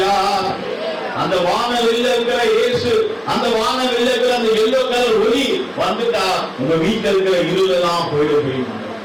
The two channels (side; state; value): both; identical; correlation 1.00